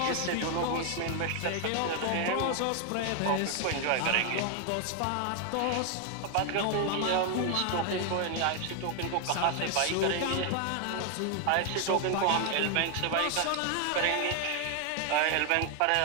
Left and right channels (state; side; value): different; both; correlation 0.01